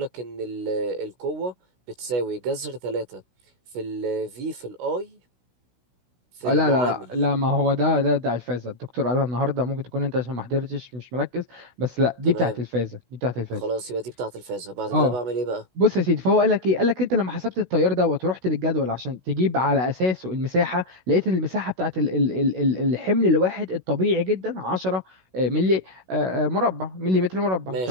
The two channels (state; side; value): late; left; 16 ms